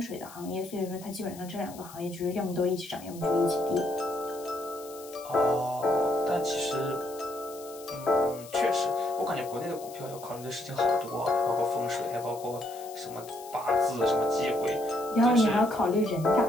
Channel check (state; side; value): noise; left; hiss, 18 dB below the sound